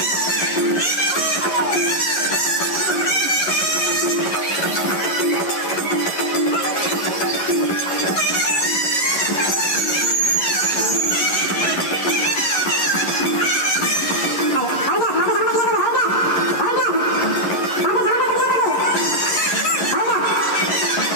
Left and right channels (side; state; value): right; late; 11 ms